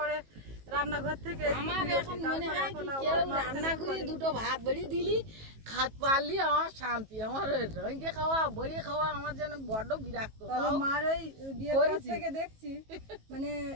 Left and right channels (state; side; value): late; left; 18 ms